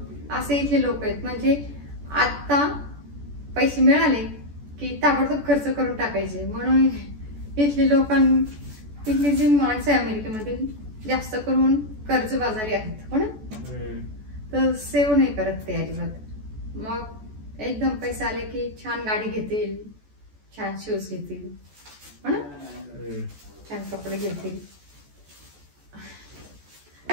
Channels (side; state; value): left; late; 14 ms